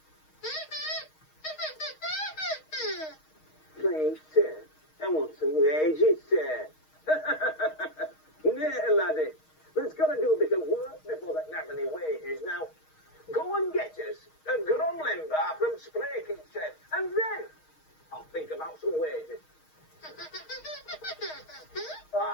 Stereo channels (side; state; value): right; late; 6.4 ms